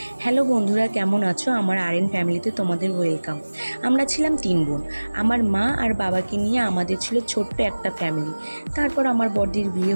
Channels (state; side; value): inverted; both; correlation -1.00